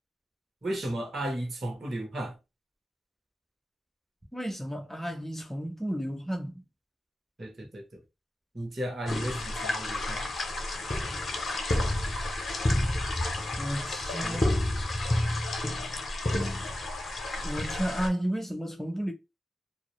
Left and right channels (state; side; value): normal; both; correlation 0.92